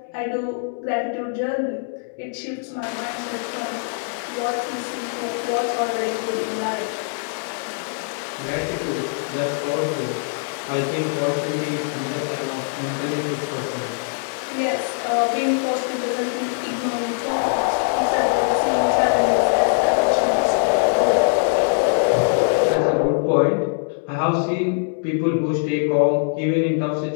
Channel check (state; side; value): silent; right; 64 dB below the other